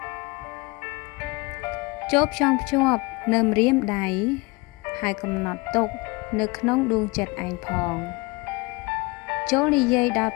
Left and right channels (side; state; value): right; quieter; 25.4 dB